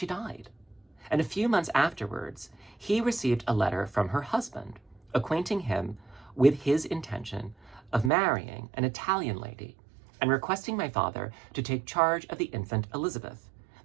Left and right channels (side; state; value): left; drops out; at 8.1 s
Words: died, and a few months afterwards, he received a letter from her husband, acquainting him with his intention of marrying an Italian lady and requesting my father to take charge of the infant Elizabeth,